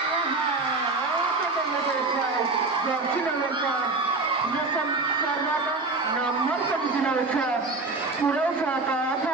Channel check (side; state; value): left; quieter; 3.5 dB